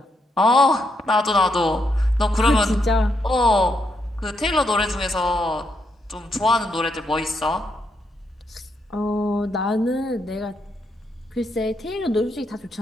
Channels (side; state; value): both; normal; correlation 0.79